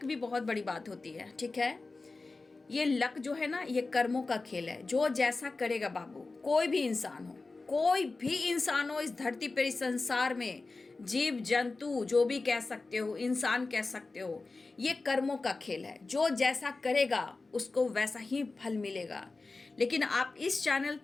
भी बहुत बड़ी बात होती है। ठीक है। ये लक जो है ना, ये कर्मों का खेल है। जो जैसा करेगा बाबू, कोई भी इंसान हो, कोई भी इंसान हो इस धरती पर, इस संसार में, जीव जंतु जो भी कह सकते हो, इंसान कह सकते हो, ये कर्मों का खेल है। जो जैसा करेगा उसको वैसा ही फल मिलेगा। लेकिन आप इस चैनल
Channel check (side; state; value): right; quieter; 3.6 dB